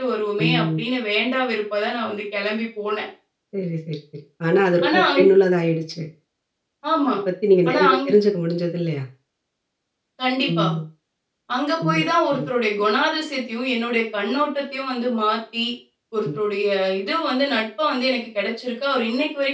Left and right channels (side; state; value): both; identical; correlation 1.00